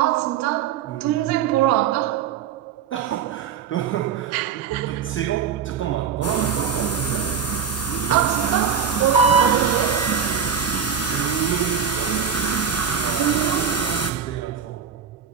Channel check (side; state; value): left; quieter; 7.5 dB